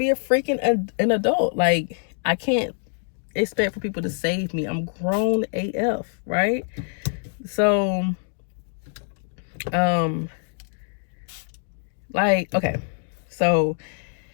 a freaking an adult. Like, I can't expect for people to save me. I'm grown AF, right? So, like, okay. So,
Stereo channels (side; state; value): right; silent; digital silence